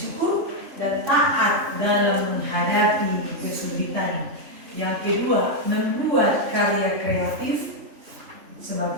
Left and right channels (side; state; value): left; late; 3.3 ms